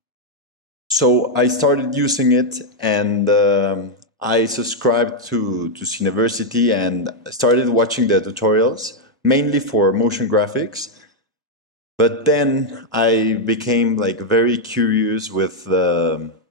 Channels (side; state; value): both; normal; correlation -0.01